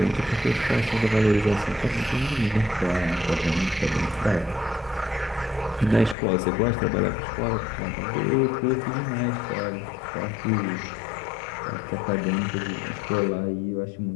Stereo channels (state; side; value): drops out; right; at 6.2 s